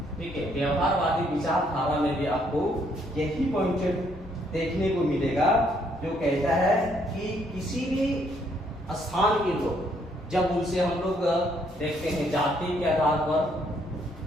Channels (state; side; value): normal; both; correlation 0.69